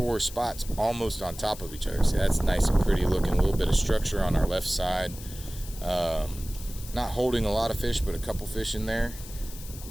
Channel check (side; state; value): left; noise; hiss, 15 dB below the sound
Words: spots almost on top of each other. See, that's nice and pretty looking. A little bit of structure on our left side. Not holding a lot of fish, but a couple fish in there.